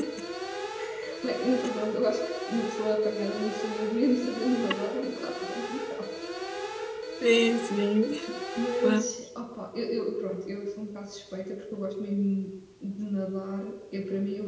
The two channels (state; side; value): identical; both; correlation 1.00